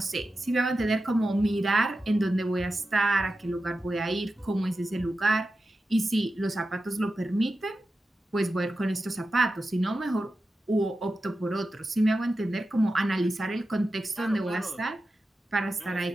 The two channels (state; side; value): normal; both; correlation 0.92